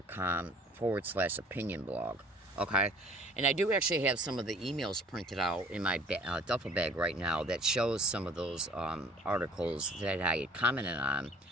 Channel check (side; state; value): both; normal; correlation 0.52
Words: blog. Okay, and I do actually have some of the emails printed out in my duffel bag right now that shows some of those articles that I had commented on.